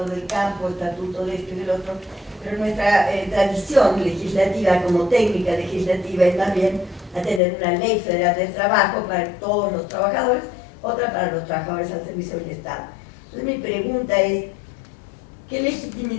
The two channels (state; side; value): drops out; right; at 7.4 s